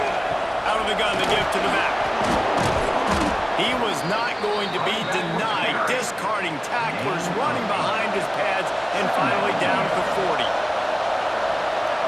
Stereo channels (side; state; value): both; identical; correlation 1.00